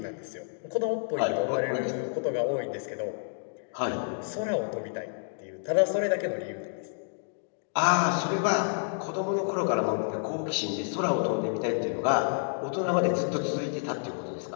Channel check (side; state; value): right; silent; digital silence